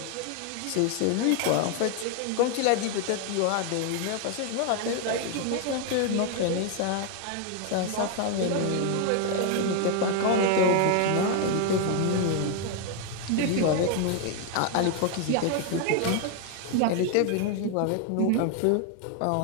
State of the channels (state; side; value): different; both; correlation 0.01